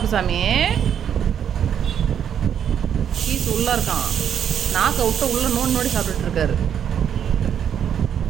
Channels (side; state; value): left; quieter; 8.7 dB